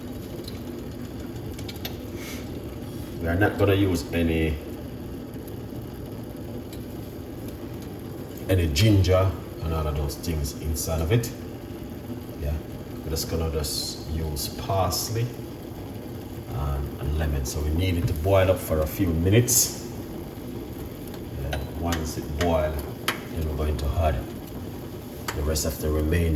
We are not going to use any ginger and all of those things inside of it. Yeah, we're just gonna use parsley and lemon. So we need it to boil up for a few minutes. Yeah, once it boils, then we're going to add the rest of the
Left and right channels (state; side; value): identical; both; correlation 1.00